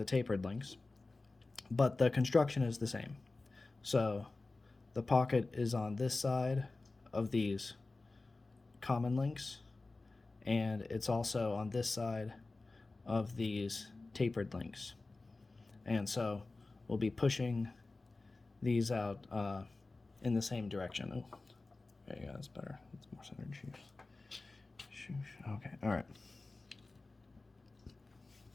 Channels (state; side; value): quieter; right; 3.4 dB